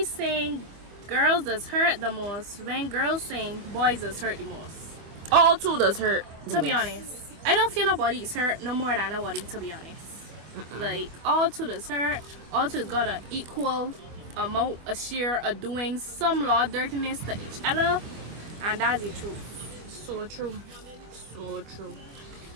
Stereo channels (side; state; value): left; late; 25 ms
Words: saying girls does hurt the most when girls saying boys does hurt the most. All two does hurt. To be honest, I don't feel nobody's hurt no more than nobody, to be honest. Like, all two does hurt. All two got an equal amount, a share of doing some law dirtiness to each other, and that's the truth. So true. So true.